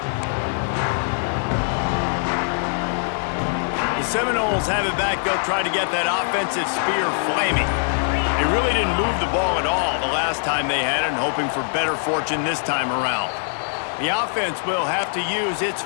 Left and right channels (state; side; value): silent; right; digital silence